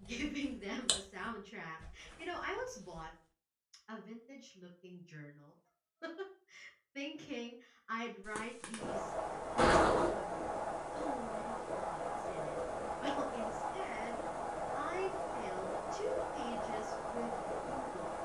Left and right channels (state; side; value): identical; both; correlation 1.00